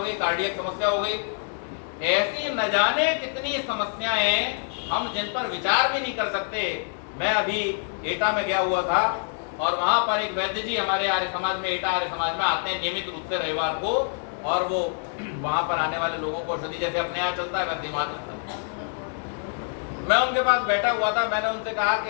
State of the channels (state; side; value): silent; right; 59 dB below the other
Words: गई, कार्डियक समस्या हो गई। ऐसी न जाने कितनी समस्याएं हम जिन पर विचार भी नहीं कर सकते। मैं अभी एटा में गया हुआ था और वहां पर एक वैद्य जी हमारे आर्य समाज में, एटा आर्य समाज में आते हैं नियमित रूप से रविवार को, और वो वहां पर आने वाले लोगों को औषधि जैसे अपने यहाँ चलता है वैसे वहां चलता है। मैं उनके पास बैठा हुआ था, मैंने उनसे कहा